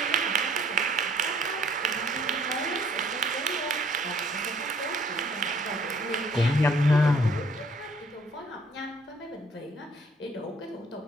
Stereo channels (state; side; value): normal; both; correlation 0.61